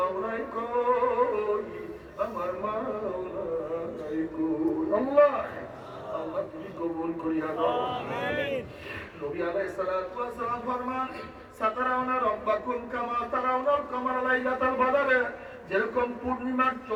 কই, আমার মাওলাই কই। আল্লাহ আল্লাহ তুমি কবুল করিয়া দাও। আমিন। নবী আলাইহিস সালাতু ওয়াস সালাম ফরমান, সাতারাউনা রাব্বাকুম কামা তারাউনাল কামারা লাইলাতাল বদরে। যেরকম পূর্ণিমার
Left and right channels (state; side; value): identical; both; correlation 1.00